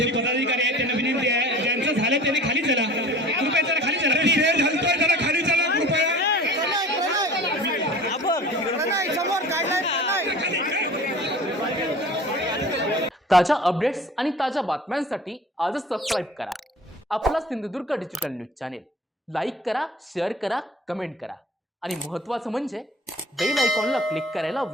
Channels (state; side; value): normal; both; correlation 0.42